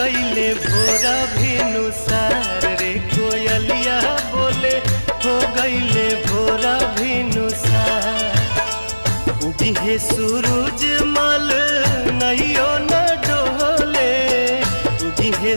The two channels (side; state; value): both; inverted; correlation -1.00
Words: भोरा भिनुसार रे कोयलिया बोले हो गईले भोरा भिनुसार। उगे सूरज मल नैयो न डोले उगे